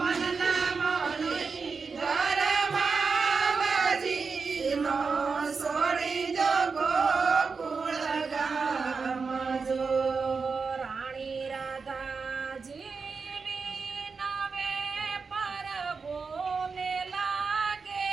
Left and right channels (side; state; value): left; quieter; 4.9 dB